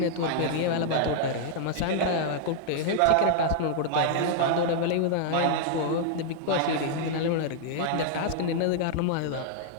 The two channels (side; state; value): both; different; correlation -0.01